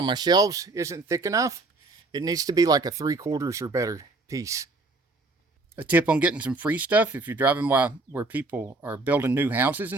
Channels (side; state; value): left; quieter; 3.3 dB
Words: my shelves isn't thick enough. It needs to be like a 3/4 or better piece. A tip on getting some free stuff: if you're driving by where people are building new houses